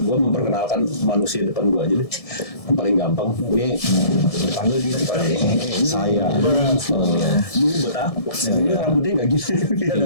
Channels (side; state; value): right; late; 1.6 ms